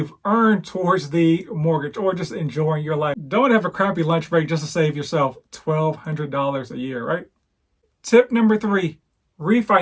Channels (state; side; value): identical; both; correlation 1.00